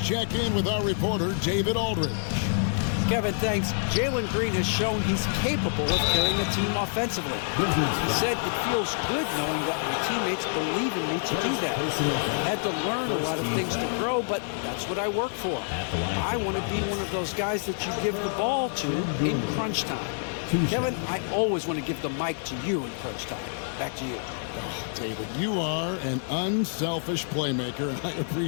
check in with our reporter, David Aldridge. Kevin, thanks. Jalen Green has shown he's capable of carrying a team offensively. He said it feels good knowing that my teammates believe in me to do that. I had to learn a lot of things to grow, but that's what I work for. I want to be one of those guys that you give the ball to in crunch time. Kevin, I always want to give the mic to you in crunch time. Back to you. Oh, David, you are an unselfish playmaker, and I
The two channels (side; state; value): right; silent; digital silence